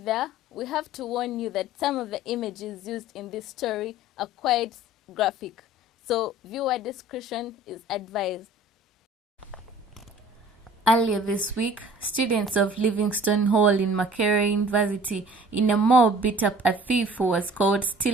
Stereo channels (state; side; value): normal; both; correlation 0.48